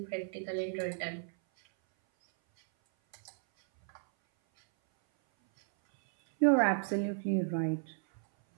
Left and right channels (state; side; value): silent; left; 56 dB below the other